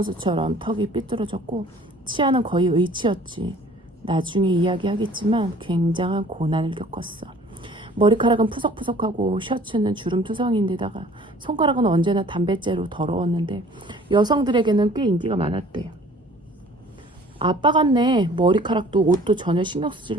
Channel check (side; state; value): both; normal; correlation 0.52